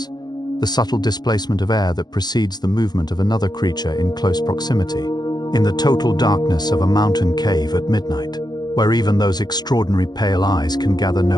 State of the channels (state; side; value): late; right; 0.20 ms